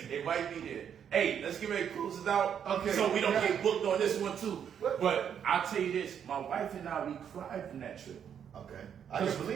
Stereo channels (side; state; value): left; quieter; 8.4 dB